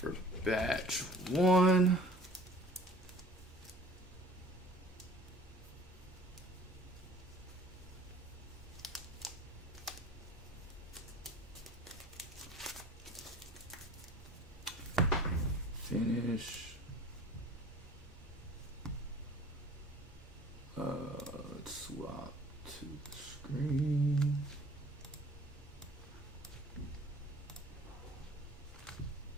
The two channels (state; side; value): normal; both; correlation 0.48